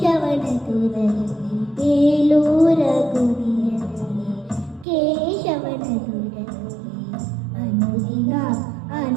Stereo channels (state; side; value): drops out; left; at 4.9 s